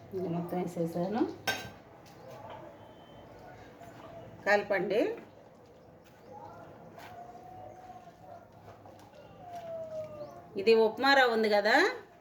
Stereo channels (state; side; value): identical; both; correlation 1.00